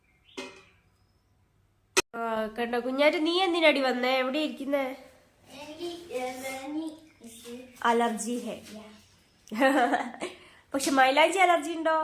കണ്ടോ കുഞ്ഞാറ്റ്, നീ എന്തിനടി വന്നേ? എവിടെ ഇരിക്കുന്നേ? അലർജി ഹേ. പക്ഷെ മൈലാഞ്ചി അലർജി ഉണ്ടോ?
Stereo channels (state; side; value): identical; both; correlation 1.00